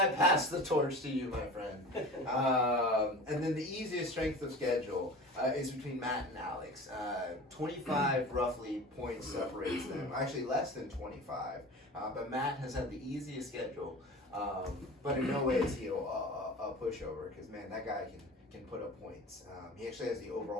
I passed the torch to you, my friend. And then the easiest strength of schedule is between Matt and Alex. 25 roughly points separates them. Actually, less than 25. But Matt has had the easiest schedule. But in no way is he a pushover, because man, that guy can put up points. He actually has the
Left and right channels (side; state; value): both; normal; correlation 0.37